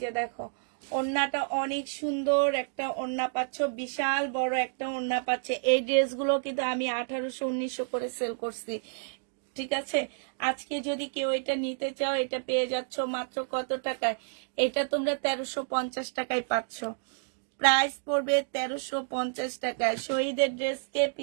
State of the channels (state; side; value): silent; left; digital silence